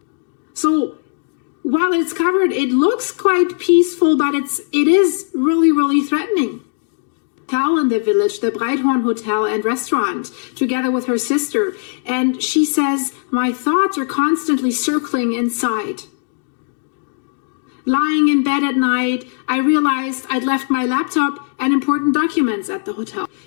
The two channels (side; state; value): right; silent; 56 dB below the other